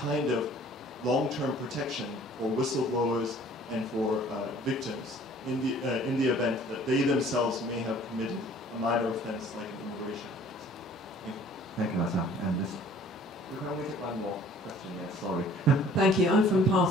of long-term protection for whistleblowers and for victims in the event that they themselves may have committed a minor offense like an immigration offense. Thank you, Hassan. And this, we can only take one more question. Yes, sorry. Thank you. I'm from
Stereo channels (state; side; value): normal; both; correlation 0.52